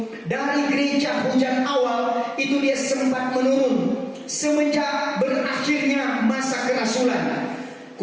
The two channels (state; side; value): identical; both; correlation 1.00